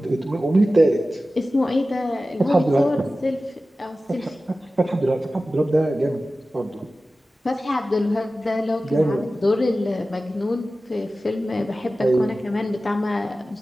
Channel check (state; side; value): normal; both; correlation 0.95